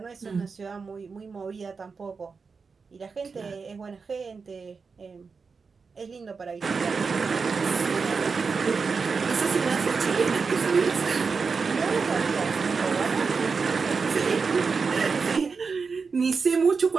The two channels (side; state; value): left; quieter; 5.0 dB